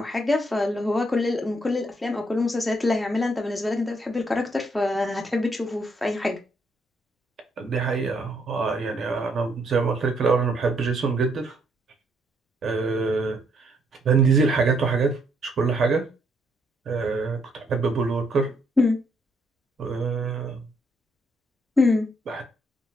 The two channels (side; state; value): both; normal; correlation 0.72